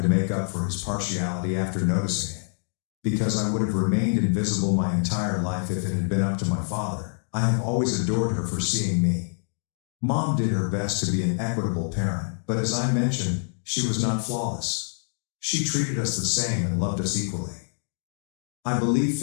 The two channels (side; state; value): right; silent; 57 dB below the other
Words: to make up for his partiality after noticing it. because I would have remained invisible my entire life if it had been up to my father. I have always adored her for seeing me. Mom did her best to be an equitable parent, but as I mentioned, she was not flawless. She treated us the same and loved us equally. I believe